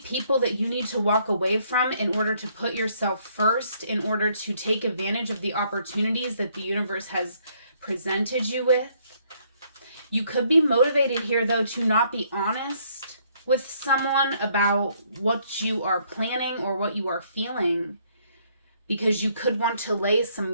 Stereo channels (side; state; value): both; inverted; correlation -0.68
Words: that you need to walk away from in order to put yourself first, in order to take advantage of the opportunities that the universe has presented you with. You could be motivated here, though, to not be honest with someone about what you are planning or what you are feeling, because you could want to lay some